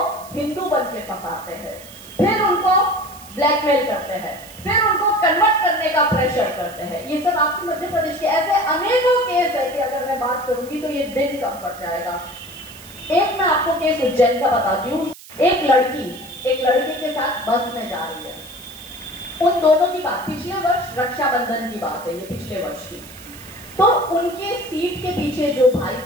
हिंदू बन के फंसाते हैं, फिर उनको ब्लैकमेल करते हैं, फिर उनको कन्वर्ट करने का प्रेशर करते हैं। ये सब आपके मध्य प्रदेश के ऐसे अनेकों केस है कि अगर मैं बात करूंगी तो ये दिन कम पड़ जाएगा। एक मैं आपको केस उज्जैन का बताती हूँ। एक लड़के के साथ बस में जा रही है। उन दोनों की बात पिछले वर्ष रक्षाबंधन की बात है, ये पिछले वर्ष की। तो उनके सीट के पीछे जो भाई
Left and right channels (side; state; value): right; noise; hiss, 19 dB below the sound